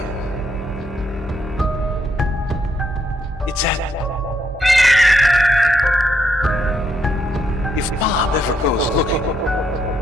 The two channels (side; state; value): both; normal; correlation 0.76